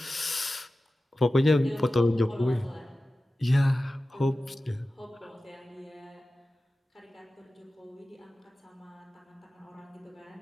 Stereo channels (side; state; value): both; normal; correlation 0.95